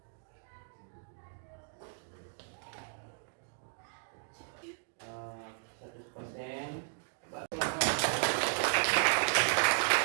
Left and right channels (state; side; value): silent; left; digital silence